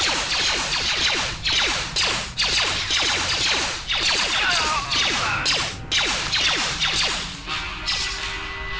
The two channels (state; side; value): identical; both; correlation 1.00